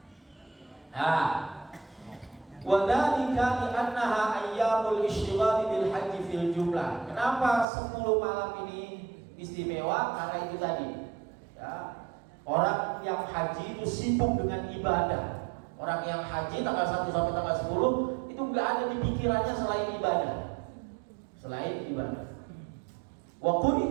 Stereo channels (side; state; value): left; drops out; at 7.7 s